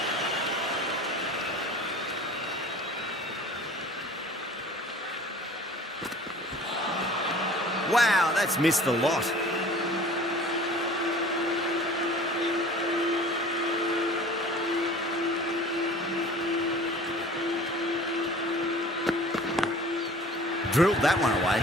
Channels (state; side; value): normal; both; correlation 0.45